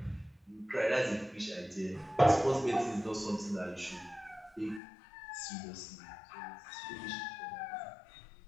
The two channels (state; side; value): drops out; right; at 4.8 s